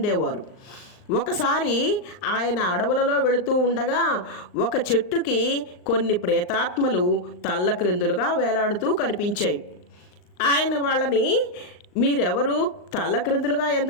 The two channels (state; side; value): late; right; 39 ms